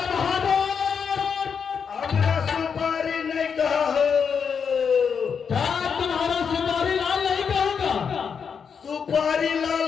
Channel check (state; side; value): quieter; right; 6.5 dB